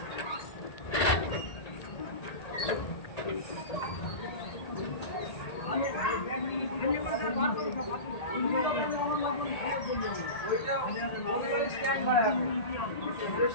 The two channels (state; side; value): late; right; 1.8 ms